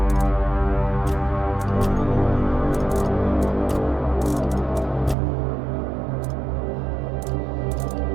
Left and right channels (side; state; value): left; drops out; at 5.2 s